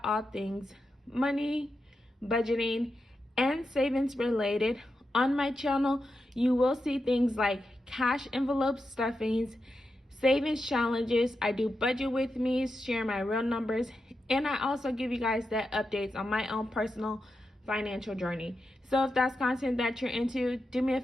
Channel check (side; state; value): both; normal; correlation 0.88